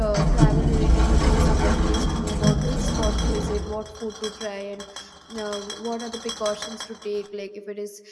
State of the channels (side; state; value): both; identical; correlation 1.00